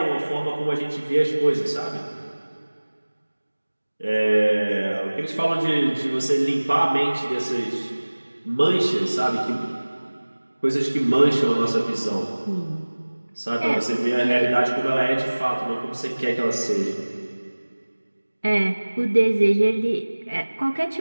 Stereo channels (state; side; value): inverted; both; correlation -1.00